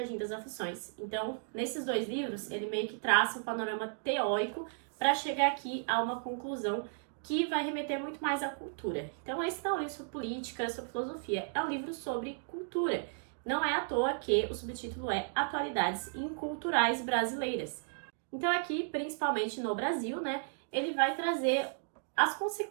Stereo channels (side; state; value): left; silent; digital silence